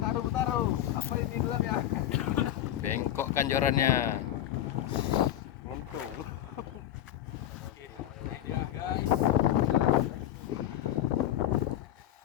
Apa ini dulu ya? Bengkok kan jorannya.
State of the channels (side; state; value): right; quieter; 12.1 dB